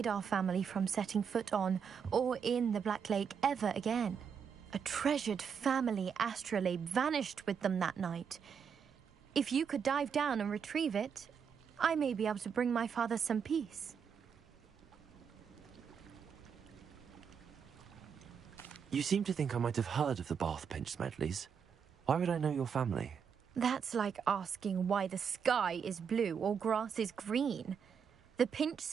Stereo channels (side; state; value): left; quieter; 6.9 dB